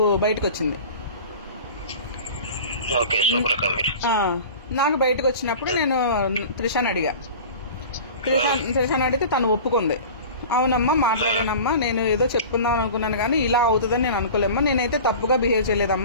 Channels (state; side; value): inverted; both; correlation -0.38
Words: బయటకు వచ్చింది. నాకు బయటకు వచ్చినప్పుడు నేను త్రిషాని అడిగా. త్రిషాని అడిగితే తను ఒప్పుకుంది. అవునమ్మా మాట్లాడానమ్మా, నేను ఏదో చెప్పుకుందాం అనుకున్నాను కానీ ఇలా అవుతుందని నేను అనుకోలేమ్మా, నేనైతే తప్పుగా బిహేవ్